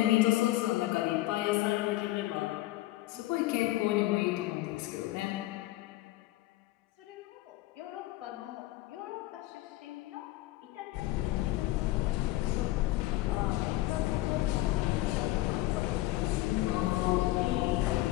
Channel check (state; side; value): quieter; right; 17.2 dB